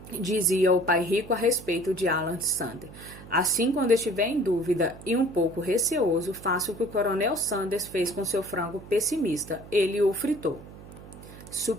dizia o pai rico a respeito de Alan Sanders. Assim, quando estiver em dúvida e um pouco receoso, faça o que o Coronel Sanders fez com seu frango pessimista. Ele o fritou.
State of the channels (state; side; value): noise; right; hum, 17 dB below the sound